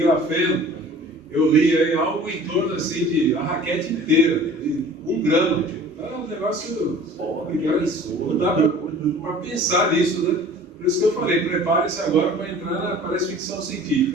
eu li aí algo em torno assim de a raquete inteira, de 1 grama. É um negócio não dá para pensar nisso, né? Por isso que eu falei, prepare-se agora para entrar na parece ficção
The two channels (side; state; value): both; normal; correlation 0.46